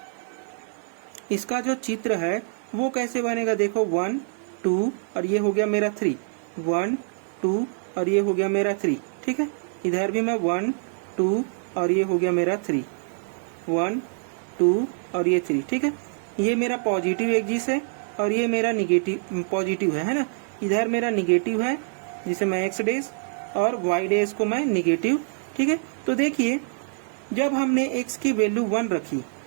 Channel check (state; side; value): silent; left; digital silence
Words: इसका जो चित्र है वो कैसे बनेगा, देखो 1 2 और ये हो गया मेरा 3, 1 2 और ये हो गया मेरा 3, ठीक है। इधर भी मैं 1 2 और ये हो गया मेरा 3, 1 2 और ये 3, ठीक है। ये मेरा पॉजिटिव एक्सिस है और ये मेरा निगेटिव पॉजिटिव है ना। इधर मेरा निगेटिव है जिसे मैं x डेज और y डेज को मैं निगेटिव, ठीक है। तो देखिए जब हमने x की वैल्यू 1 रखी